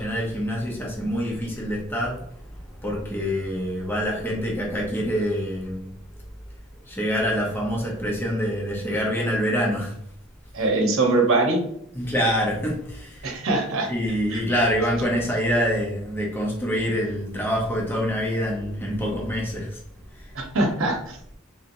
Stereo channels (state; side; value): normal; both; correlation 0.50